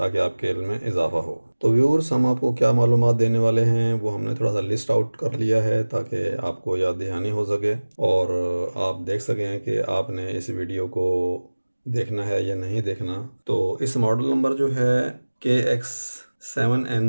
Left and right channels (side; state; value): both; inverted; correlation -1.00